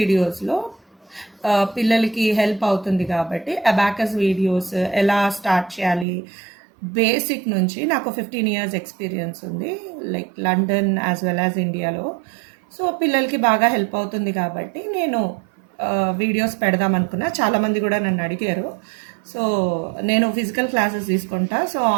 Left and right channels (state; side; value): drops out; left; at 6.1 s